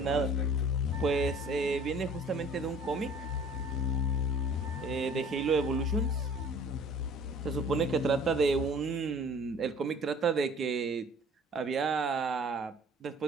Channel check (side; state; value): both; normal; correlation 0.51